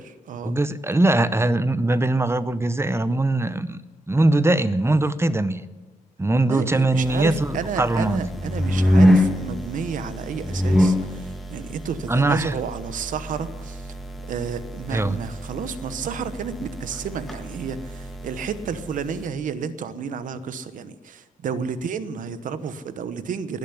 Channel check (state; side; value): normal; both; correlation 0.83